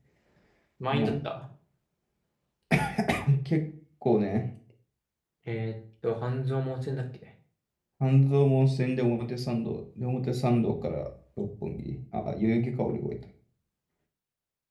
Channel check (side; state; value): both; identical; correlation 1.00